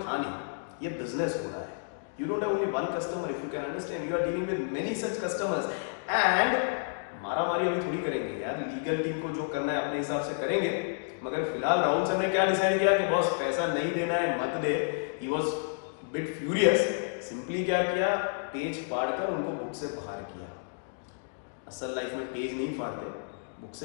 था नहीं, ये बिजनेस हो रहा है। You don't have only one customer, if you can understand. You are dealing with many such customers. And मारामारी अभी थोड़ी करेंगे यार, लीगल टीम को जो करना है अपने हिसाब से करेंगे। मगर फिलहाल राहुल सर ने क्या डिसाइड किया कि बॉस पैसा नहीं देना है, मत दे। He was bit furious. Simply क्या किया, पेज फाड़कर उनको बुक से बाहर किया। असल लाइफ में पेज नहीं फाड़ते, बुक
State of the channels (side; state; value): right; silent; digital silence